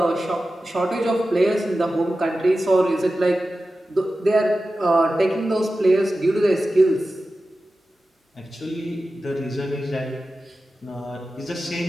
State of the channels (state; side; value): normal; both; correlation 0.94